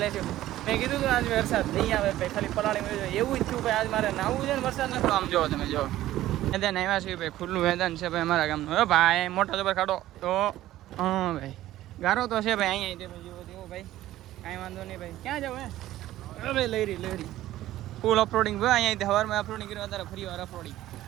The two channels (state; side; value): quieter; left; 14.5 dB